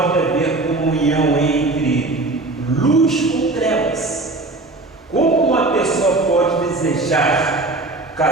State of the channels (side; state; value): left; quieter; 3.1 dB